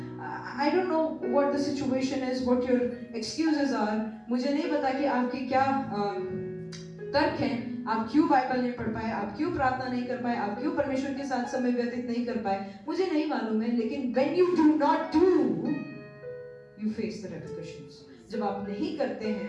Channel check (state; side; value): identical; both; correlation 1.00